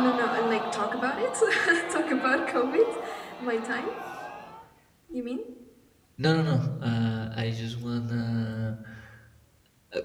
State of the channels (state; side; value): identical; both; correlation 1.00